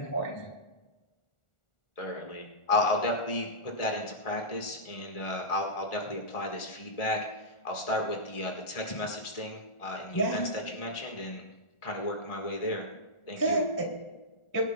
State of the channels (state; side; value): late; right; 1.4 ms